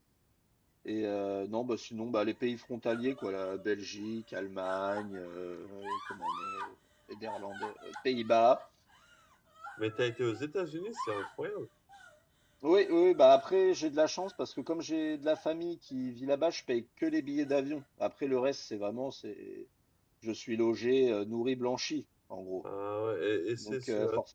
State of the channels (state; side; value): identical; both; correlation 1.00